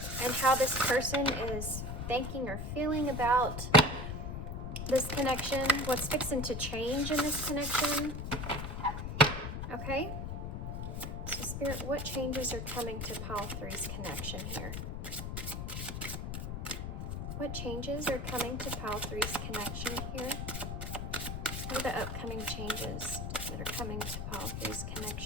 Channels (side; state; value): left; noise; rumble, 4 dB below the sound